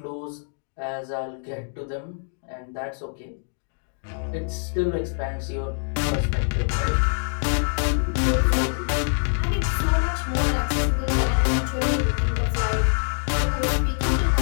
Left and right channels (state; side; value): silent; right; 62 dB below the other